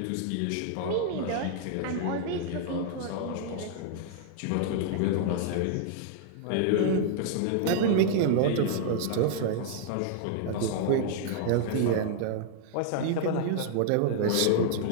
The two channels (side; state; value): both; different; correlation -0.01